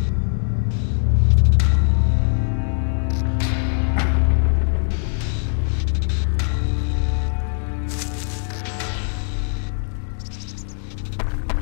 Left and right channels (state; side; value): silent; right; digital silence